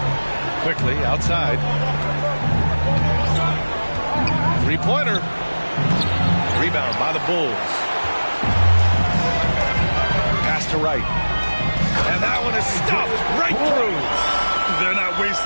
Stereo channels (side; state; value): both; inverted; correlation -1.00